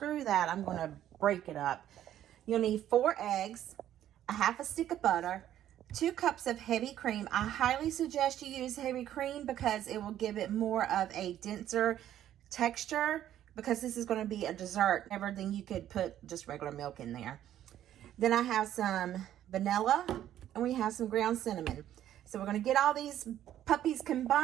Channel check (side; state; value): left; quieter; 11.7 dB